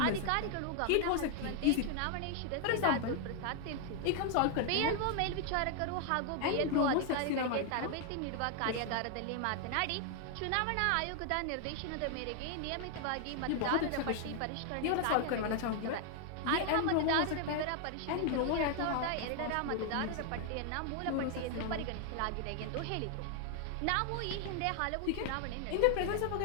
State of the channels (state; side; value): different; both; correlation 0.00